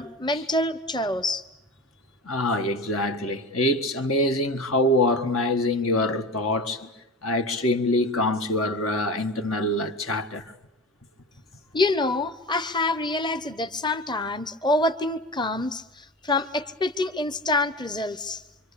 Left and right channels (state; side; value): normal; both; correlation 0.30